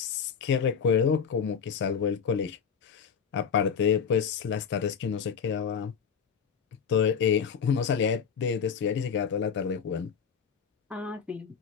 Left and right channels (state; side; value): quieter; right; 6.8 dB